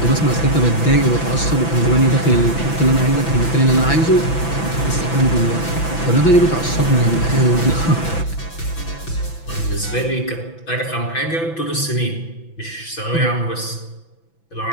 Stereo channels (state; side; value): late; right; 6.0 ms